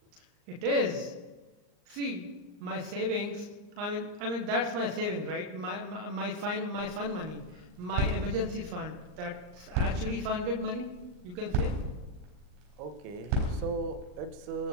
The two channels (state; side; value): late; left; 39 ms